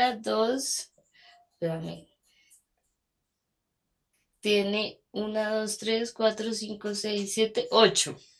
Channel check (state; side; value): identical; both; correlation 1.00